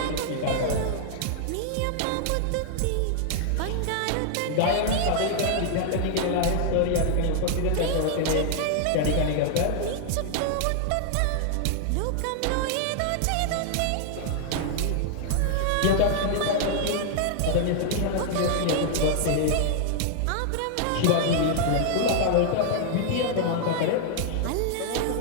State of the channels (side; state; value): both; different; correlation 0.00